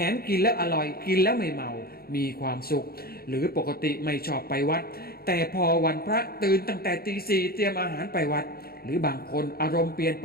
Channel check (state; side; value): late; right; 0.44 ms